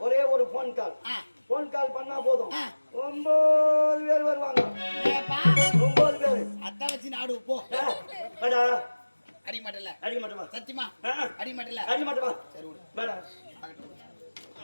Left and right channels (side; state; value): both; inverted; correlation -1.00